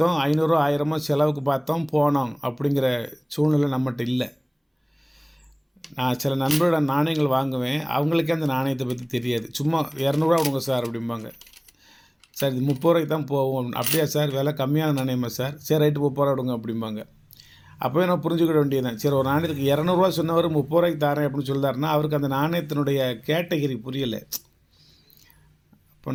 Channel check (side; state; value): both; identical; correlation 1.00